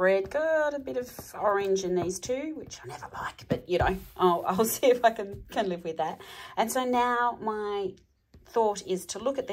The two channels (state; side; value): identical; both; correlation 1.00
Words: got a bit of orange in these two, which I never like, but you know, I'll see if I can live with that. And so now my thought is to look at